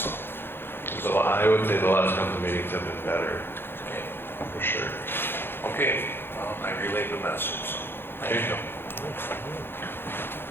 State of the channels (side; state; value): right; late; 0.10 ms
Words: I would say the last couple of meetings have been better, Okay. for sure. Okay. I relayed the message. So thank you.